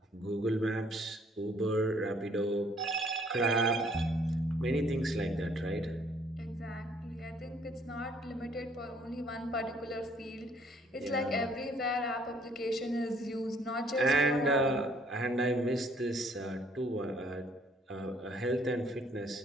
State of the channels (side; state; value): both; normal; correlation 0.62